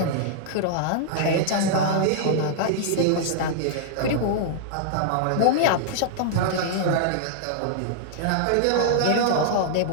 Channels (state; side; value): different; both; correlation -0.01